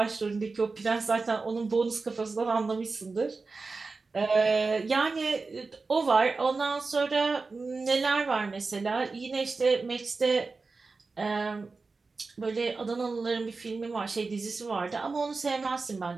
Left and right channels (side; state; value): left; quieter; 4.0 dB